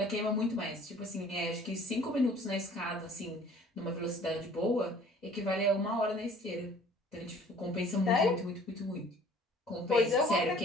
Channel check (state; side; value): normal; both; correlation 0.52